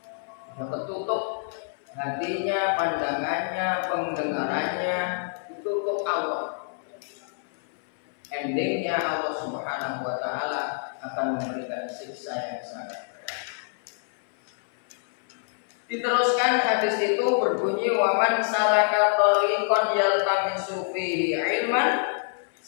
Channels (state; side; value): silent; right; 61 dB below the other